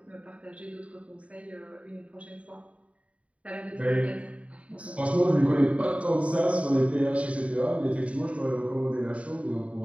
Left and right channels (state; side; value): late; left; 0.065 ms